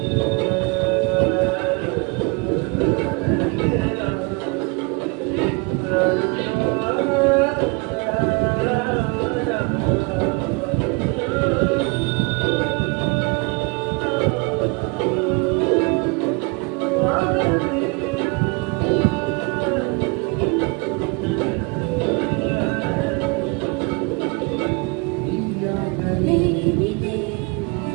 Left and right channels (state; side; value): quieter; left; 30.1 dB